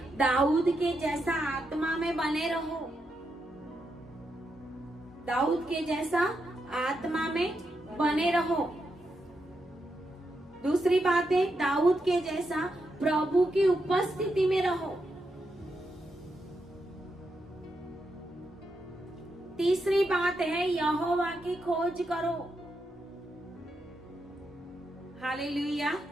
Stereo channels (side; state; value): both; normal; correlation 0.84